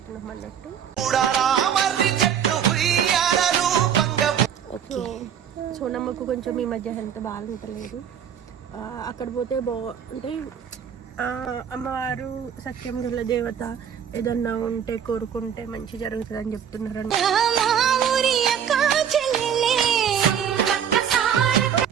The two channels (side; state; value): left; quieter; 8.6 dB